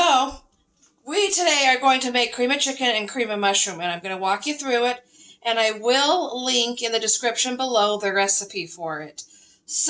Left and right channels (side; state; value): both; identical; correlation 1.00